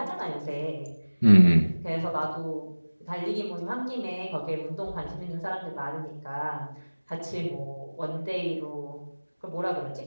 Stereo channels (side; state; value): both; inverted; correlation -1.00